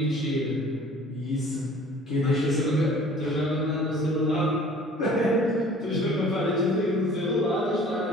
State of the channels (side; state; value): both; normal; correlation 0.49